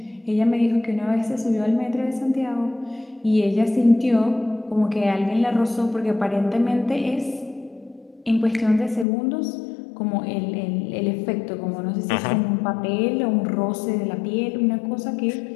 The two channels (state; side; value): drops out; right; at 9.1 s